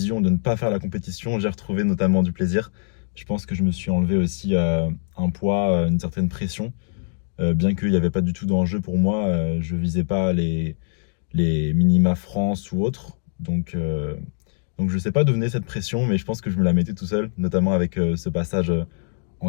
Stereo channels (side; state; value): right; silent; digital silence